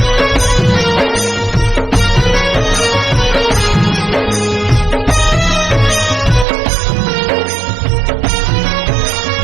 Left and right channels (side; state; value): left; drops out; at 6.5 s